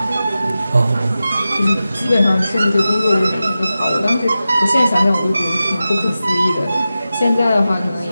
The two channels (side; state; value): both; inverted; correlation -0.93